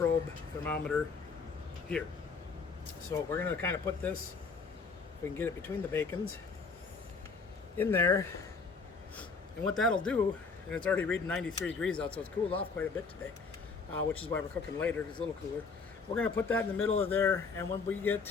thermometer here. So we're going to kind of put this, if we can get it between the bacons, in there. And what that'll do, and it's already reading 93 degrees out, so it's cooled off quite a bit today, which is why we're cooking later, it's a little cooler. We're going to put that in the middle of there, and when we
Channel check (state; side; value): quieter; right; 4.8 dB